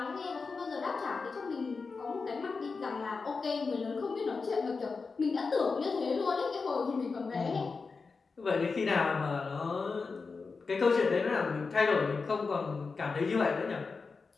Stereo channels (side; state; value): right; quieter; 4.6 dB